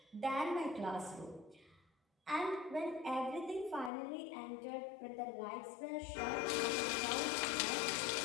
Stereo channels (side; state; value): right; drops out; at 3.9 s